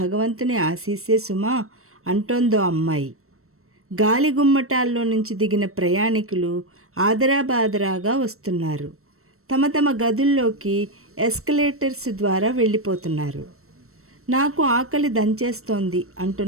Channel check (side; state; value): left; late; 0.63 ms